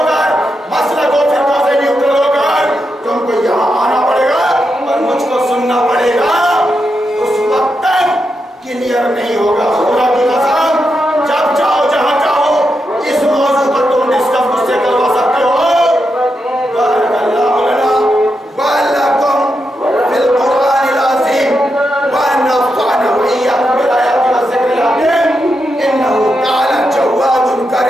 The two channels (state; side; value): normal; both; correlation 0.85